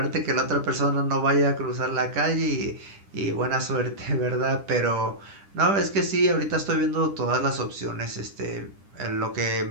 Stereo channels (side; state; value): left; late; 10 ms